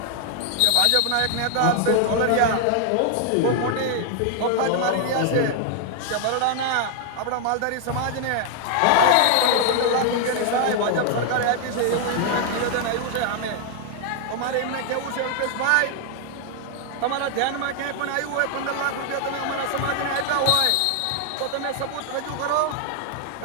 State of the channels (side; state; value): both; different; correlation 0.00